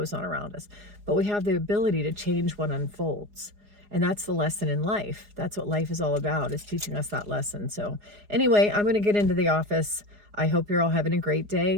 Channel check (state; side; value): late; left; 4.8 ms